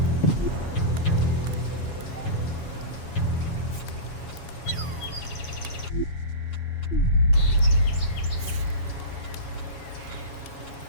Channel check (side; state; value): right; late; 7.2 ms